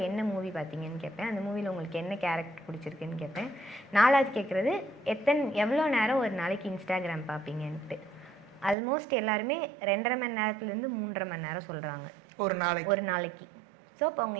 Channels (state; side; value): drops out; left; at 8.8 s